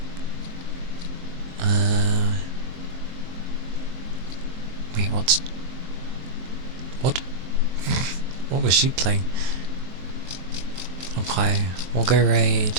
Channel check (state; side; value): late; left; 23 ms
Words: Wait, what? What was she playing? Okay, we'll go